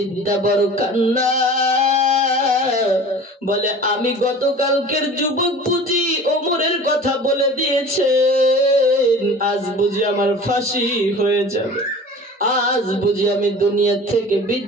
বড় কান্না, বলে, আমি গতকালকের যুবক বুঝি ওমরের কথা বলে দিয়েছেন, আজ বুঝি আমার ফাঁসি হয়ে যাবে, আজ বুঝি আমি দুনিয়া থেকে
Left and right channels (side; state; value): both; normal; correlation 0.41